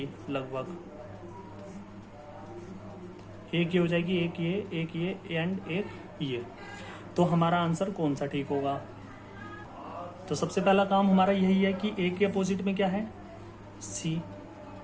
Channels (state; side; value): identical; both; correlation 1.00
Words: लगभग एक ये हो जाएगी, एक ये एंड एक ये। तो हमारा आंसर कौन सा ठीक होगा? तो सबसे पहला काम हमारा यही है कि ए के अपोजिट में क्या है? सी।